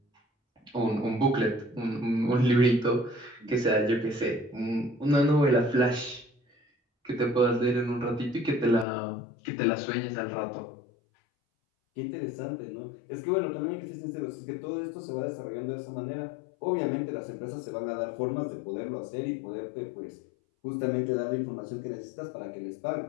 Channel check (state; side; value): drops out; right; at 8.8 s